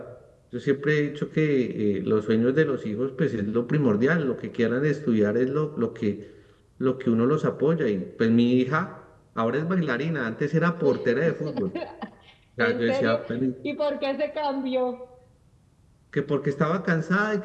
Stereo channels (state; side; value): identical; both; correlation 1.00